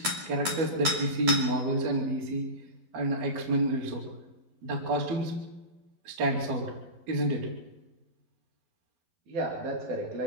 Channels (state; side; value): late; left; 11 ms